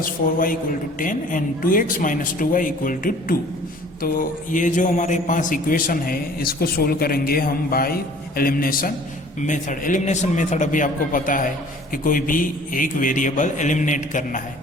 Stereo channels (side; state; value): both; normal; correlation 0.51